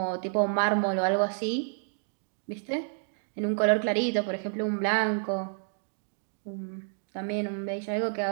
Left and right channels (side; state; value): left; silent; digital silence